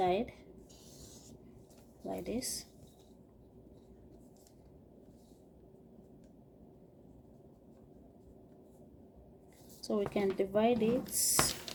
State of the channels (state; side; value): identical; both; correlation 1.00